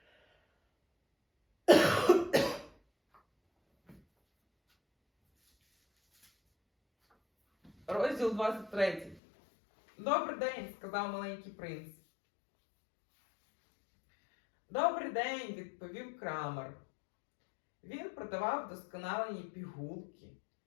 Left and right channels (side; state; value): right; drops out; at 9.2 s